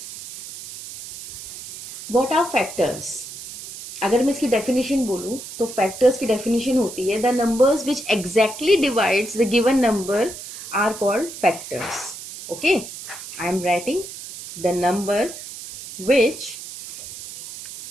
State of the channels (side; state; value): right; noise; hiss, 12 dB below the sound